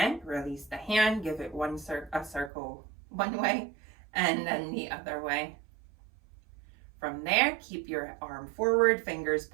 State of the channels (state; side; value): drops out; left; at 2.5 s